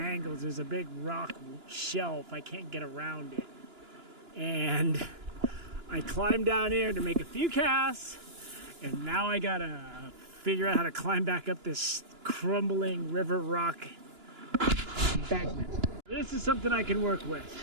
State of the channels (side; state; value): left; late; 2.9 ms